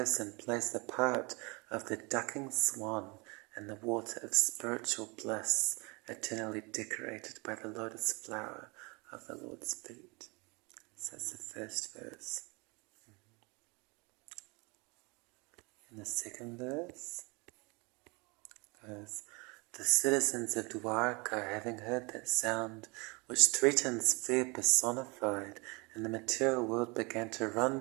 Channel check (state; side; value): quieter; left; 28.1 dB